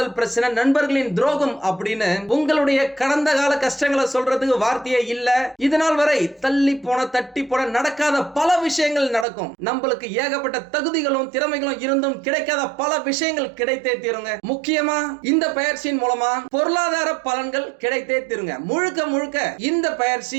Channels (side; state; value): left; drops out; at 9.2 s